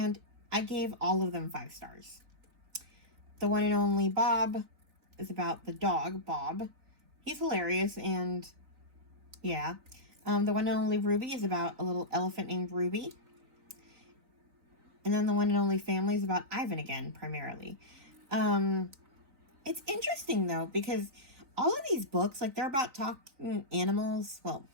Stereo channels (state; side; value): late; left; 3.9 ms